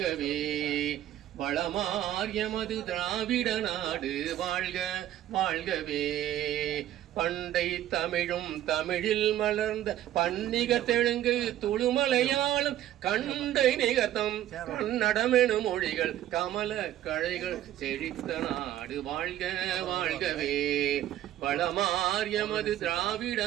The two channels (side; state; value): left; quieter; 12.7 dB